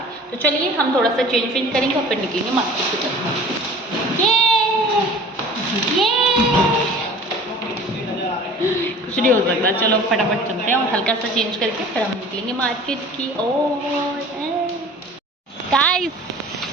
तो चलिए हम थोड़ा सा चेंज करेंगे और फिर निकलेंगे मार्केट की तरफ। कुछ नहीं हो सकता, चलो फटाफट चलते हैं और हल्का सा चेंज करके फिर हम निकलेंगे मार्केट की ओर। गाइस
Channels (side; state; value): both; normal; correlation 0.44